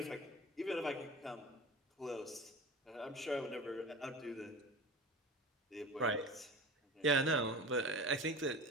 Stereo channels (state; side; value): normal; both; correlation 0.33